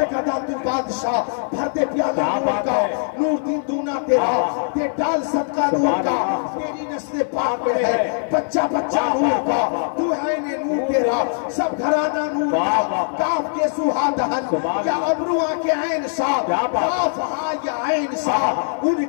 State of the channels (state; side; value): silent; right; 63 dB below the other